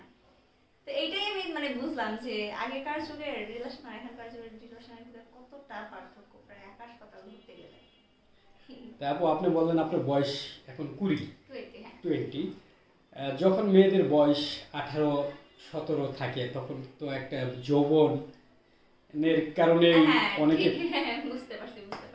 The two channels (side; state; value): both; identical; correlation 1.00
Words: তো এইটাই আমি মানে বুঝলাম যে আগেকার যুগের রিলেশন আর এখনকার যুগের রিলেশনের ভিতরে কতটা পার্থক্য, প্রায় আকাশ পাতাল ঘুরতে গেলে। তারপর আপনি বললেন আপনার বয়স এখন 20, হ্যাঁ 20। যখন মেয়েদের বয়স 18-17 থাকে তখন তো একটা যৌবনের কারণে হ্যাঁ অনেকে, বুঝতে পারছি বুঝতে